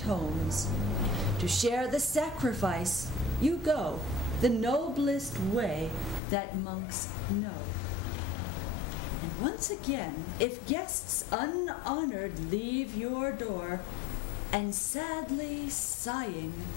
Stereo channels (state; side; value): drops out; right; at 6.2 s